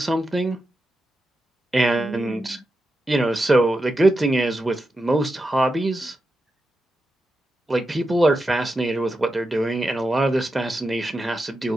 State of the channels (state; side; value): normal; both; correlation 0.89